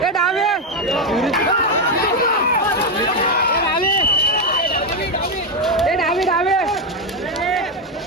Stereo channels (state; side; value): normal; both; correlation 0.06